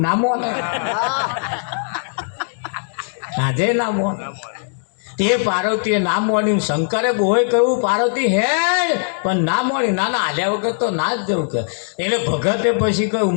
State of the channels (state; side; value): silent; right; digital silence